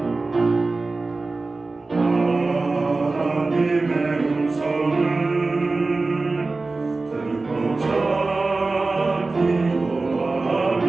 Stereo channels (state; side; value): quieter; left; 3.5 dB